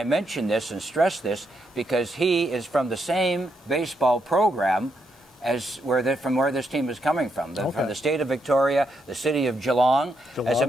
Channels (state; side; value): normal; both; correlation 0.80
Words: mention this and stress this because he is from the same baseball program as from where this team is coming from. From the state of Victoria, the city of Geelong. As a